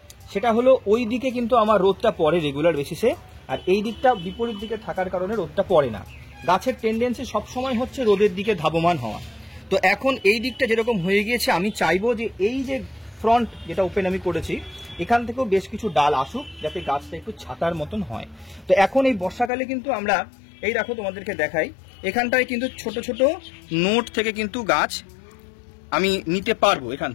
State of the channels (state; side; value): drops out; right; at 19.5 s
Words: সেটা হলো ওই দিকে কিন্তু আমার রোদটা পড়ে রেগুলার বেসিসে, আর এই দিকটা বিপরীত দিকে থাকার কারণে রোদটা পড়ে না। গাছের টেন্ডেন্সি সবসময় হচ্ছে রোদের দিকে ধাবমান হওয়া। তো এখন এই দিকটা যেরকম হয়ে গিয়েছে, আমি চাইবো যে এই যে ফ্রন্ট যেটা ওপেন আমি করেছি এখান থেকেও বেশ কিছু ডাল আসুক, যাতে গাছটা একটু ছাতার মতন হয়। তো এখন এই বর্ষাকালে কিন্তু আমরা এই দেখো তোমাদেরকে দেখাই, এখানটায় কিন্তু ছোট ছোট নোট থেকে কিন্তু গাছ আমি নিতে পারবো এখান